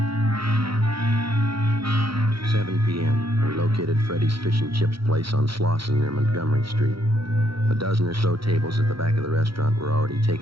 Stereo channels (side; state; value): left; late; 0.75 ms